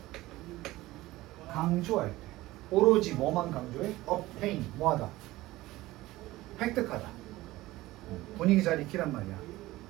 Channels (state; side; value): quieter; left; 17.9 dB